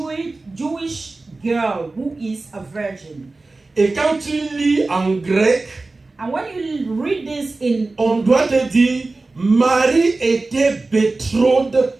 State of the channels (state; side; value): quieter; left; 3.4 dB